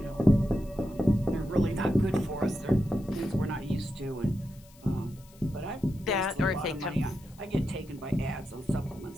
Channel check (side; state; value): left; noise; hiss, 26 dB below the sound